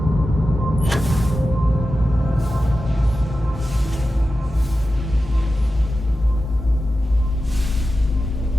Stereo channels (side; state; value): both; normal; correlation 0.92